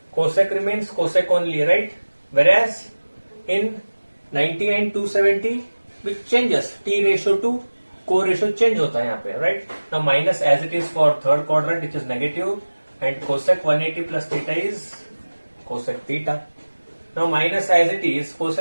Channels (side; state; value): both; inverted; correlation -1.00